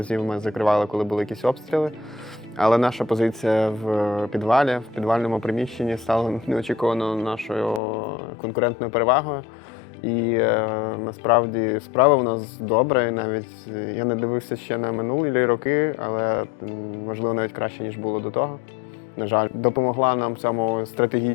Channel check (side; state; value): right; drops out; at 7.8 s